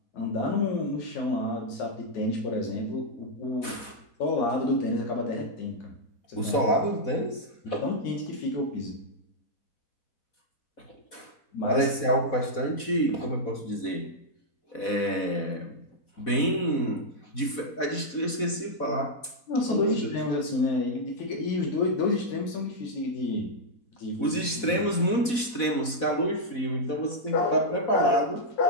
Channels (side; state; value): right; late; 4.1 ms